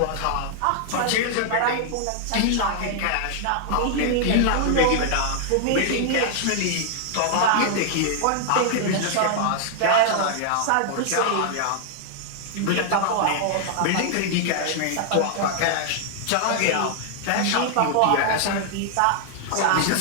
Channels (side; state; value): both; different; correlation -0.01